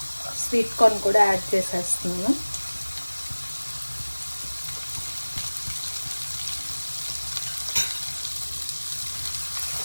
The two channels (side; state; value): both; inverted; correlation -1.00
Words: స్వీట్ కార్న్ కూడా యాడ్ చేసేస్తున్నాను.